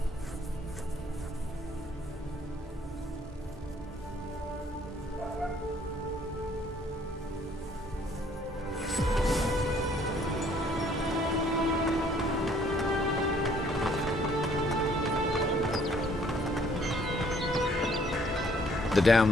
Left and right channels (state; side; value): normal; both; correlation 0.62